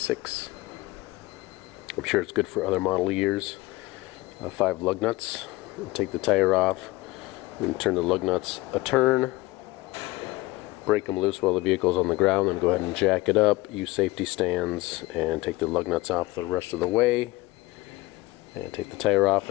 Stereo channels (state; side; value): quieter; right; 20.6 dB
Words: I'm sure it's good for other model years. 5 lug nuts. Take the tire off and turn the lug nuts a turn. Break them loose while the vehicle's on the ground, then go ahead and jack it up. Use safety stands and take the lug nuts off the rest of the way. And take the tire off,